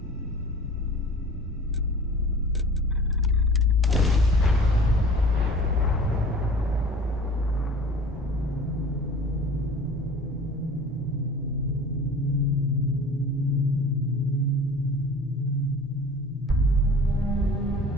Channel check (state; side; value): normal; both; correlation 0.43